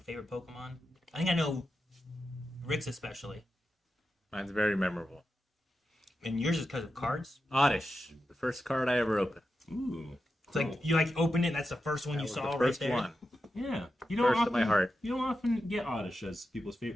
Pokemon? I think I know Rick's especially, Mine's very memorable. and yours is because of cards. Oddish. The first card I ever opened. Ooh. It's like you like opened it. And that's the first one That you was saw the right first there. one. Yeah. You First to my heart. You don't often get Oddish as people's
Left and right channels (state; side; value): normal; both; correlation 0.89